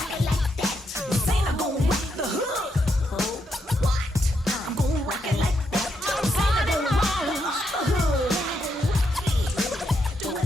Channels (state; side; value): normal; both; correlation 0.80